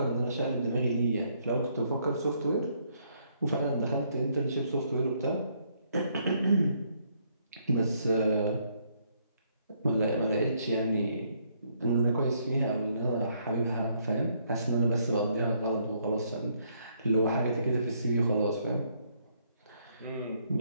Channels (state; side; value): inverted; both; correlation -0.70